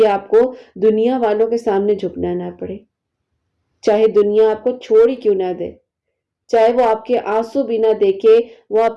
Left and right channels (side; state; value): both; identical; correlation 1.00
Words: آپ کو دنیا والوں کے سامنے جھکنا نہ پڑے، چاہے دنیا آپ کو چھوڑ ہی کیوں نہ دے، چاہے وہ آپ کے آنسو بھی نہ دیکھے، وہ